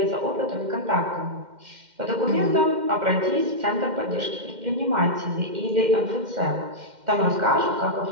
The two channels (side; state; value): left; late; 2.1 ms